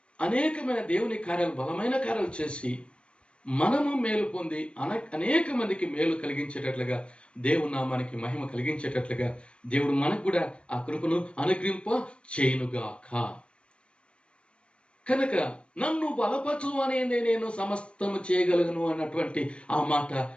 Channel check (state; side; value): late; right; 0.058 ms